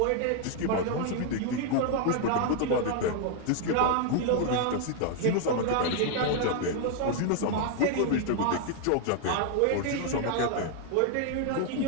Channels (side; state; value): both; different; correlation 0.00